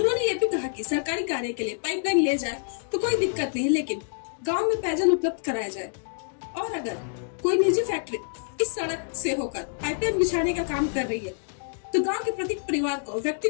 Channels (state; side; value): silent; right; digital silence